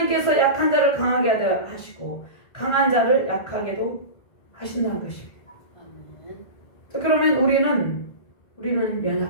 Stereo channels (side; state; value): right; late; 1.5 ms